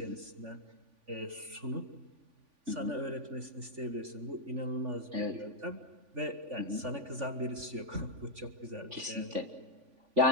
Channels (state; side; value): late; left; 3.5 ms